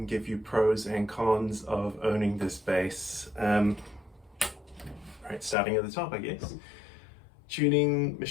give you pros and cons of owning this bass. Right, starting at the top, I guess. Tuning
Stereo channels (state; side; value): drops out; right; at 5.6 s